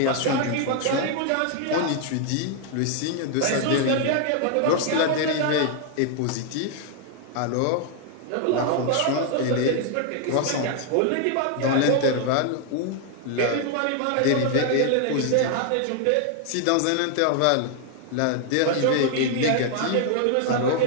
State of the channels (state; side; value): different; both; correlation 0.00